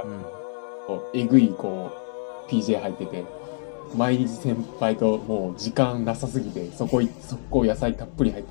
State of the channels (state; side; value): silent; right; digital silence